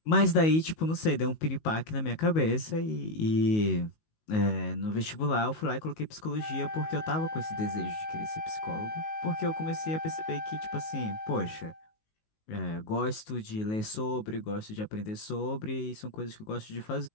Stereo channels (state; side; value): late; right; 19 ms